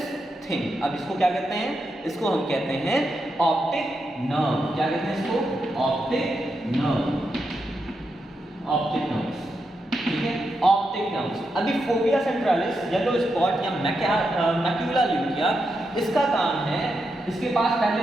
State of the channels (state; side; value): normal; both; correlation 0.85